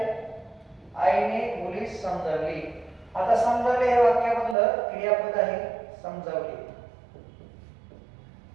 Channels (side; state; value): left; drops out; at 4.5 s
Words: आईने मुलीस समजावली. आता समजावले हे वाक्यामधलं क्रियापद आहे, समजावले.